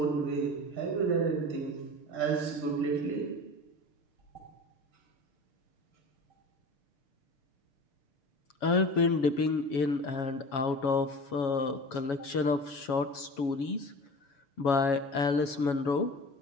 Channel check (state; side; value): late; right; 7.2 ms